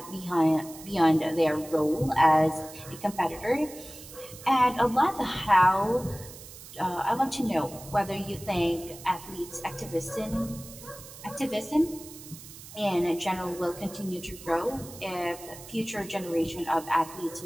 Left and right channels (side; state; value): right; noise; hiss, 16 dB below the sound